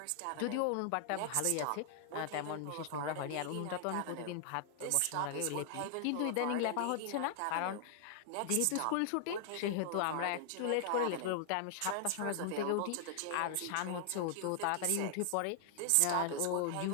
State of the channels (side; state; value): both; different; correlation 0.00